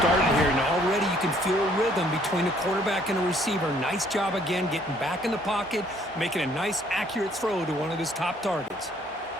here, and already you can feel a rhythm between the quarterback and the receiver. Nice job again getting back in the pocket, making a nice, accurate throw to one of his top targets.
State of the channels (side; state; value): both; normal; correlation 0.63